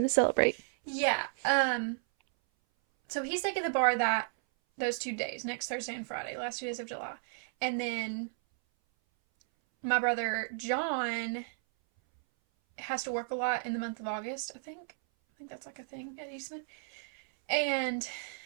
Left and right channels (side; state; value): left; silent; 56 dB below the other